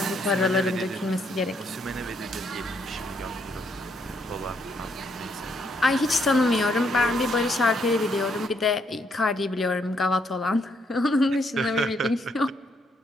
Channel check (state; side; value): normal; both; correlation 0.73